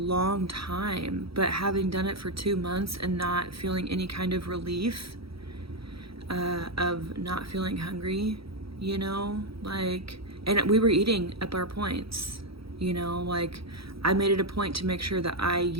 time, but having done it for 2 months and not feeling any kind of relief of not feeling hungry, you know, like, and we were eating up our points, you know, like, I made it a point to make sure that I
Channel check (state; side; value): late; left; 0.76 ms